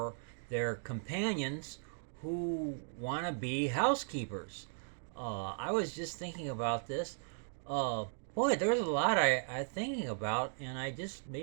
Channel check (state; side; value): silent; left; digital silence